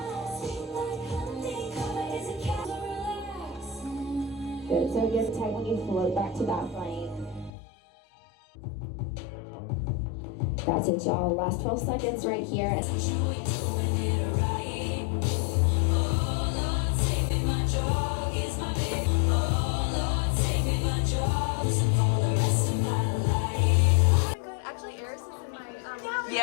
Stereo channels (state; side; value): drops out; right; at 7.5 s